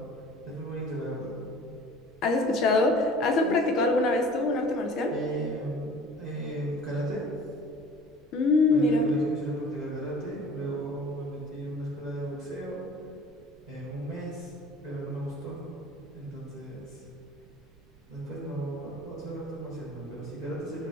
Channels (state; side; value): noise; right; rumble, 27 dB below the sound